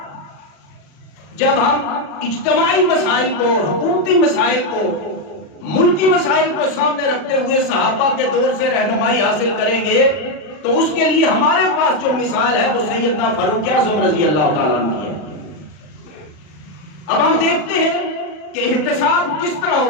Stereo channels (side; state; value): right; late; 40 ms